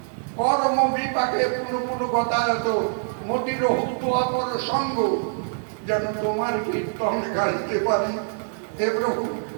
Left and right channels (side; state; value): left; silent; digital silence